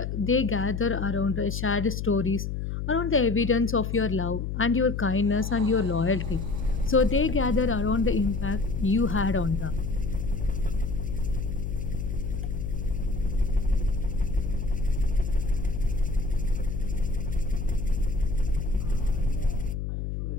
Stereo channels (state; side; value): noise; left; hum, 3 dB below the sound